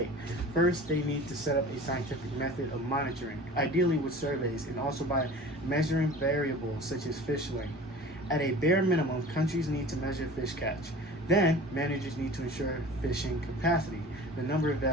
First, they need to set up a scientific method of monitoring, ideally with surveys, and also by measuring variables such as fish length. At a bare minimum, countries need to measure fish catch. Then, managers need to ensure fishing capacity. The number of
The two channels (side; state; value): both; normal; correlation 0.41